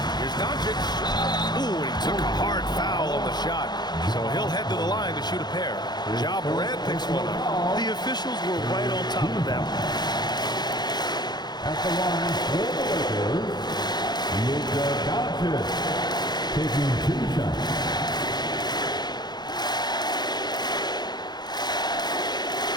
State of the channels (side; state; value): right; late; 0.20 ms